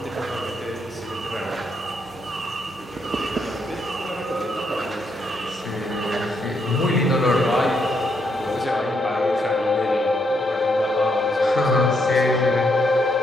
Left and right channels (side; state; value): both; normal; correlation 0.77